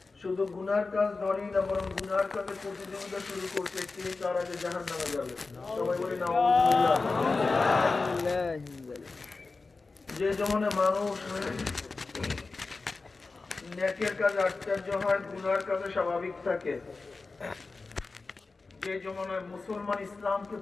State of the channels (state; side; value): quieter; right; 3.9 dB